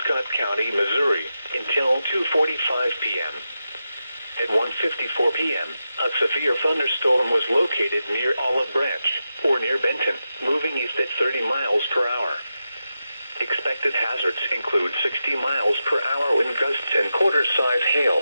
Scott County, Missouri, until 2:45 p.m. At 1:54 p.m., a severe thunderstorm was located near Olive Branch, or near Benton, moving east at 30 miles per hour. Expected hazards include 60 miles per hour wind gusts and quarter-size hail.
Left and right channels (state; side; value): inverted; both; correlation -0.89